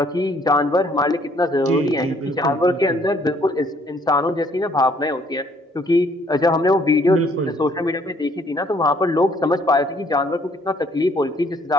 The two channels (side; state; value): both; normal; correlation 0.63